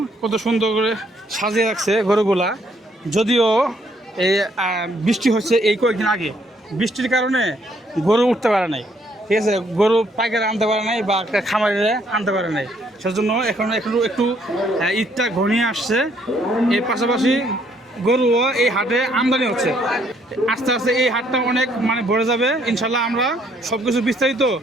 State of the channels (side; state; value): both; normal; correlation 0.68